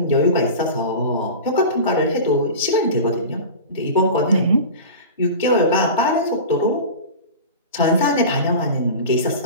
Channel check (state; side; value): inverted; both; correlation -0.32